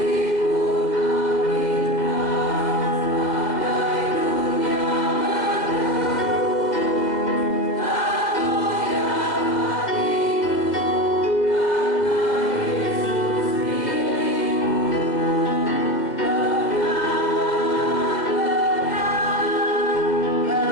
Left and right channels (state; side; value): late; right; 2.0 ms